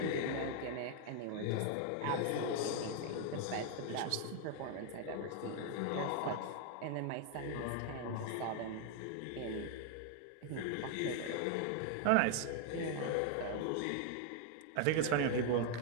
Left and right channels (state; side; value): different; both; correlation 0.00